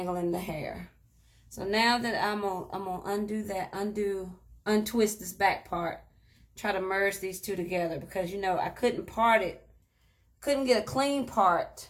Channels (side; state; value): both; identical; correlation 1.00